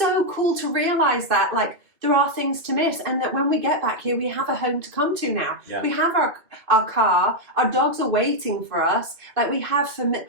cool to realize that, like, there are things to miss, and that when we get back here, we have a home to come to now. Yeah. We have our car, our dogs are waiting for us. Like, we have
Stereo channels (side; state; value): left; late; 2.4 ms